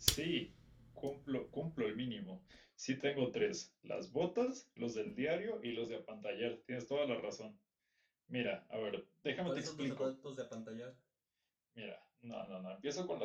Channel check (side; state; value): both; identical; correlation 1.00